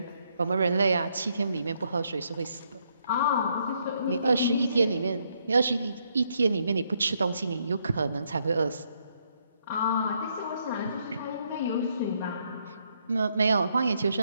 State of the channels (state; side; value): inverted; both; correlation -0.74